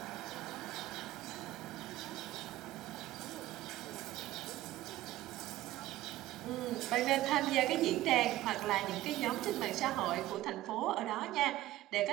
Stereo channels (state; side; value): quieter; left; 15.6 dB